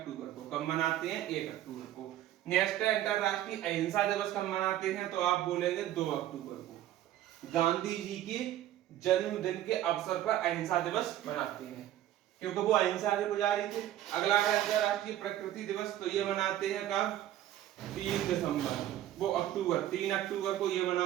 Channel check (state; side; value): quieter; left; 12.8 dB